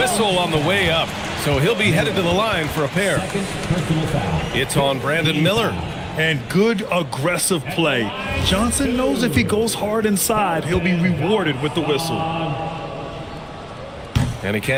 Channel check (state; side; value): identical; both; correlation 1.00